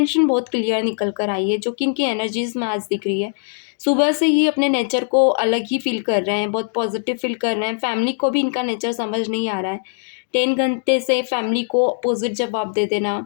बहुत क्लियर निकल कर आई है, जो कि इनकी एनर्जीज में आज दिख रही है। सुबह से ही अपने नेचर को अलग ही फील कर रहे हैं, बहुत पॉजिटिव फील कर रहे हैं। फैमिली को भी इनका नेचर समझ नहीं आ रहा है। 10 घंटे से फैमिली को अपोजिट जवाब दे देना,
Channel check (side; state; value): right; silent; digital silence